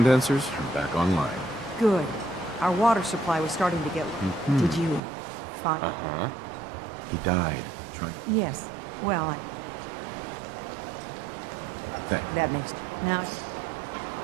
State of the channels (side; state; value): left; drops out; at 5.0 s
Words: are back online. Good. Our water supply was starting to get... Did you find... Uh-huh. He died trying... Yes. Well, Thank you. that makes... Now...